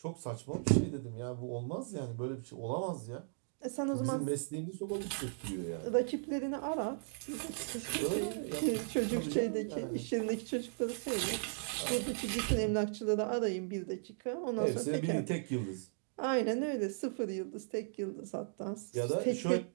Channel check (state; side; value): silent; left; digital silence